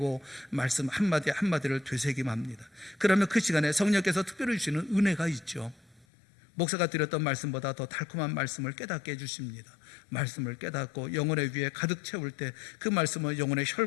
말씀 한마디 한마디를 되새김합니다. 그러면 그 시간에 성령께서 특별히 주시는 은혜가 있죠. 목사가 드렸던 말씀보다 더 달콤한 말씀을 깨닫게 해주십니다. 말씀을 깨닫고 영혼의 위에 가득 채울 때 그 말씀은 영혼의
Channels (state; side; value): drops out; right; at 6.1 s